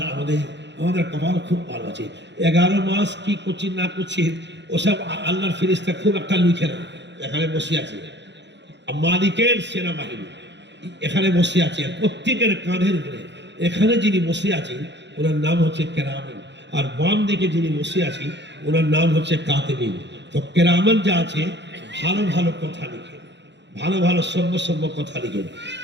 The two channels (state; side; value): late; left; 0.52 ms